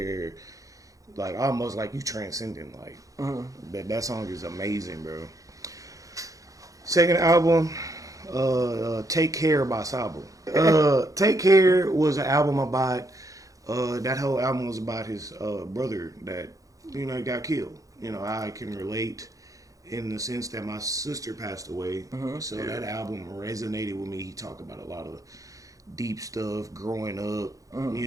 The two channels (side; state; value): left; late; 0.16 ms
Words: like, almost like you transcending. Like that song is amazing, bro. Second album, "Take Care" by Sabo. "Take Care" was an album about. That whole album was about his brother that got killed. I can relate in the sense that my sister passed away, so that album resonated with me. He talked about a lot of deep stuff, growing up,